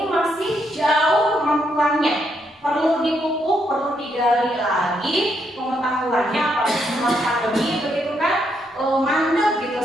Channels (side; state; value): both; normal; correlation 0.76